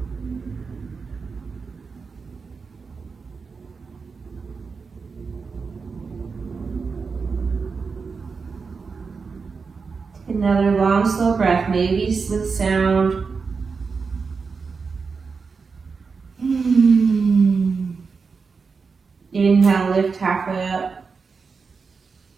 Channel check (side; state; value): left; quieter; 5.0 dB